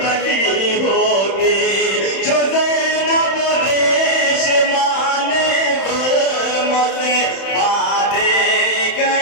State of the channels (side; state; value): right; late; 31 ms